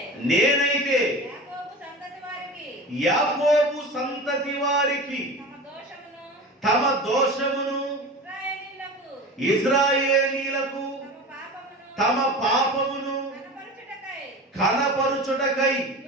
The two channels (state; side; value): normal; both; correlation 0.32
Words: నేనైతే యాకోబు సంతతి వారికి తమ దోషమును, ఇశ్రాయేలీయులకు తమ పాపమును కనపరుచుటకై